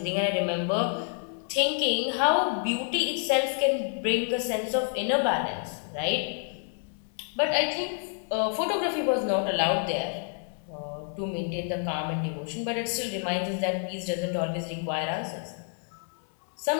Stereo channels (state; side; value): silent; right; 56 dB below the other